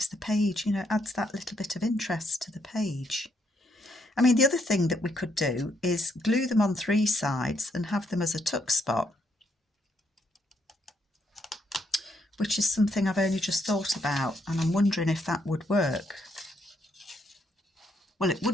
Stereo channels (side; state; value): both; normal; correlation 0.74